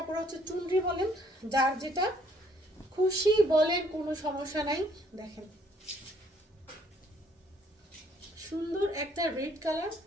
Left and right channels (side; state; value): both; normal; correlation 0.64